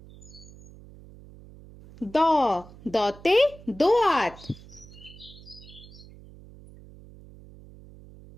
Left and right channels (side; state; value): right; noise; hum, 20 dB below the sound